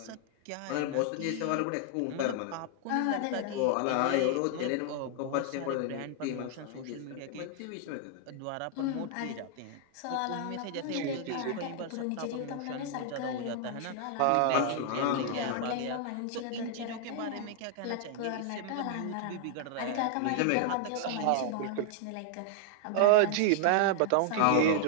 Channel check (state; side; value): different; both; correlation 0.00